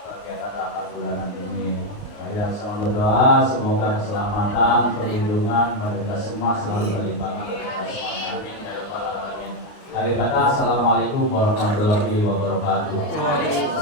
kegiatan 8 bulanan ini. Mari sama berdoa, semoga keselamatan, perlindungan pada kita semua selalu terlimpahkan kepada kita semuanya. Amin ya rabbal alamin. Akhir kata, assalamualaikum warahmatullahi wabarakatuh.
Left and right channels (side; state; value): right; late; 29 ms